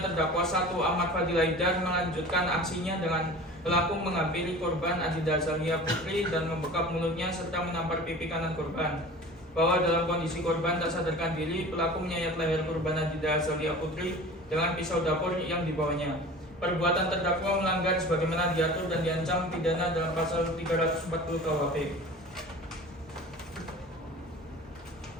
terdakwa 1 Ahmad Fadil Haidar melanjutkan aksinya dengan pelaku menghampiri korban Adinda Azalia Putri dan membekap mulutnya serta menampar pipi kanan korban. Bahwa dalam kondisi korban tak sadarkan diri, pelaku menyayat leher korban Adinda Azalia Putri dengan pisau dapur yang dibawanya. Perbuatan terdakwa melanggar sebagaimana diatur dan diancam pidana dalam pasal 340 KUHP.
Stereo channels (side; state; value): both; normal; correlation 0.39